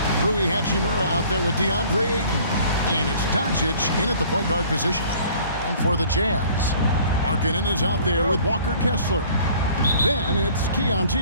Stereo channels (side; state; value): both; inverted; correlation -0.52